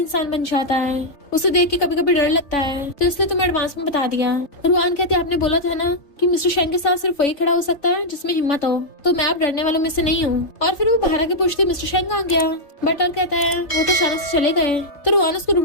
बन जाता है। उसे देख के कभी कभी डर लगता है तो इसलिए तुम्हें एडवांस में बता दिया। रुआन कहती है आपने बोला था ना कि मिस्टर शेंग के साथ सिर्फ वही खड़ा हो सकता है जिसमें हिम्मत हो तो मैं अब डरने वालों में से नहीं हूँ। और फिर वो बाहर आके पूछती मिस्टर शेंग कहाँ गया? बटलर कहता है वो तो अचानक से चले गए। तो रुआन उसको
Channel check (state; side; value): late; right; 3.5 ms